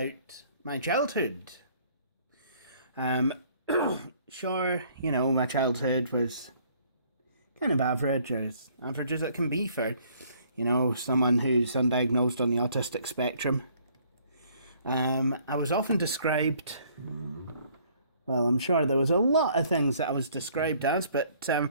my childhood. Sure, my childhood was kind of average, or as average as it can be for, someone who's undiagnosed on the autistic spectrum. I was often described... Well, I'm sure there was a lot of things that I was described as, but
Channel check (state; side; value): inverted; both; correlation -0.61